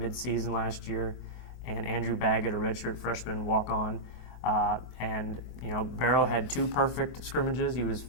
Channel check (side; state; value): right; late; 24 ms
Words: last year, and Andrew Baggett, a redshirt freshman walk-on. Barrow had two perfect scrimmages. He was